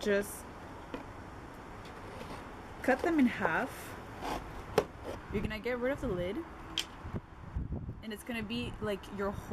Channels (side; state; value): both; identical; correlation 1.00